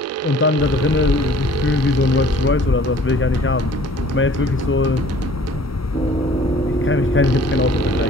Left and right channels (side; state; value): both; normal; correlation 0.52